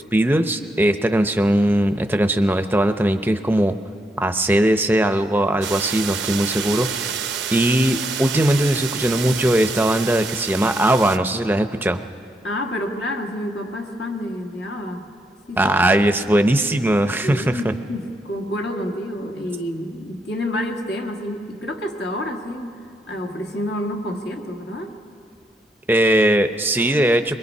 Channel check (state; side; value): normal; both; correlation 0.78